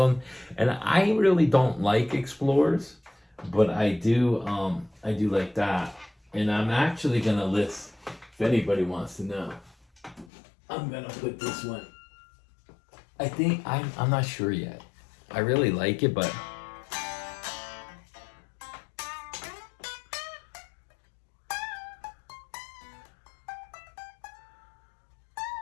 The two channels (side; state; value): right; drops out; at 10.3 s